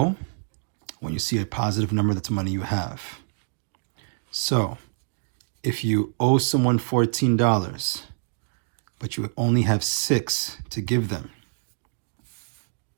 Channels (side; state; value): left; silent; digital silence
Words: When you see a positive number, that's money you have. So, if you owe someone $14, but you only have 6 to give them,